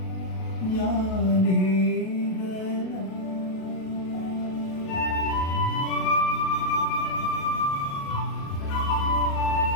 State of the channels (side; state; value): right; late; 37 ms